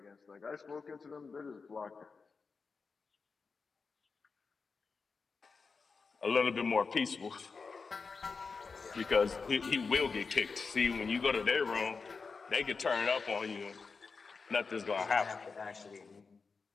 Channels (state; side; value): quieter; right; 4.8 dB